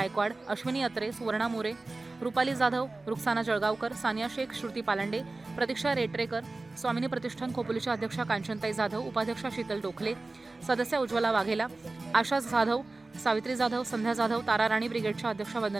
अश्विनी अत्रे, सुवर्णा मोरे, रुपाली जाधव, रुक्साना जळगावकर, सानिया शेख, श्रुती पालांडे, प्रतीक्षा रेटरेकर, स्वामिनी प्रतिष्ठान खोपोलीच्या अध्यक्षा कांचनताई जाधव, उपाध्यक्षा शीतल डोखले, सदस्य उज्ज्वला वाघेला, आशा जाधव, सावित्री जाधव, संध्या जाधव, तारा राणी ब्रिगेडच्या अध्यक्षा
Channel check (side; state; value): left; quieter; 3.3 dB